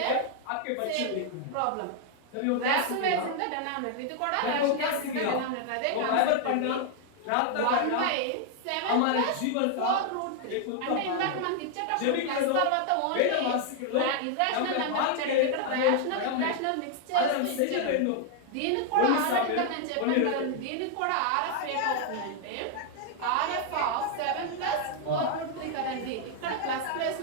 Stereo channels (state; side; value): different; both; correlation 0.00